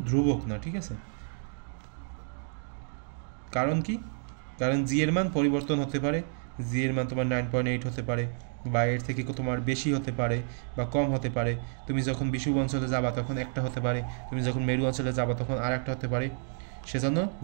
ধ্রুবক না, ঠিক আছে? কারণ কি? কারণ জি এর মান পরিবর্তন হতে পারে। জি এর মান তোমার 9.8 হতে পারে, বা এর থেকে তোমার বেশি হতে পারে বা কম হতে পারে। তুমি যখন বিষুব অঞ্চলে যাবা তখন একটা হতে পারে, তুমি যখন মেরু অঞ্চলে যাবা তখন আর একটা হতে পারে। সেজন্য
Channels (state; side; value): silent; left; 58 dB below the other